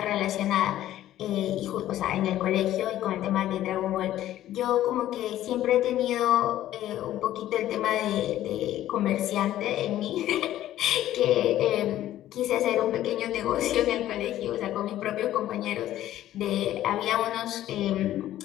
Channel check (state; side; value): quieter; right; 13.3 dB